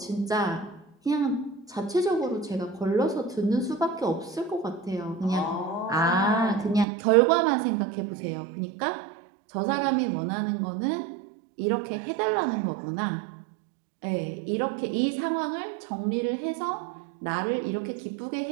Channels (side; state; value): left; drops out; at 6.9 s